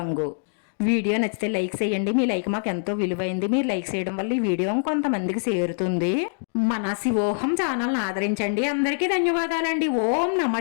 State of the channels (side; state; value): right; silent; digital silence